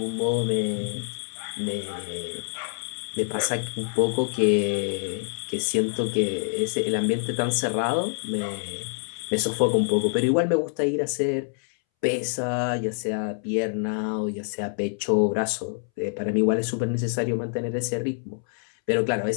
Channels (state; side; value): silent; right; 61 dB below the other